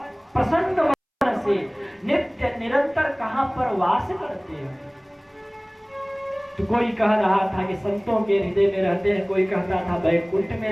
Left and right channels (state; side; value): identical; both; correlation 1.00